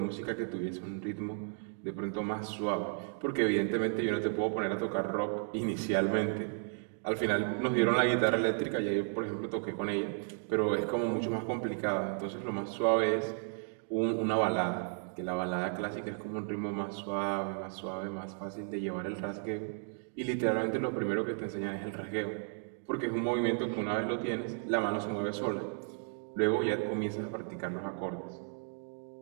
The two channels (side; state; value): left; silent; 55 dB below the other